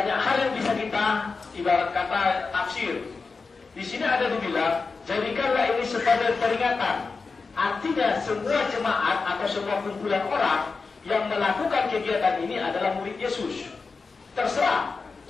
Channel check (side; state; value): right; quieter; 4.4 dB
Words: hal yang bisa kita ibarat kata tafsir. Di sini ada dibilang, jadikanlah ini sebagai peringatan. Artinya semua jemaat atau semua kumpulan orang yang melakukan kegiatan ini adalah murid Yesus. Terserah.